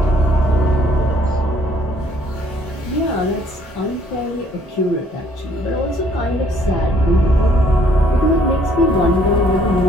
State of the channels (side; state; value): both; normal; correlation 0.63